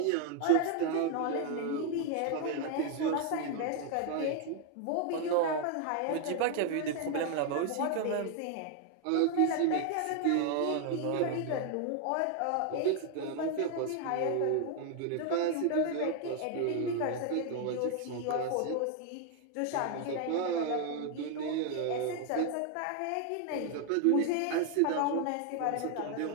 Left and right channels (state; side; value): different; both; correlation 0.00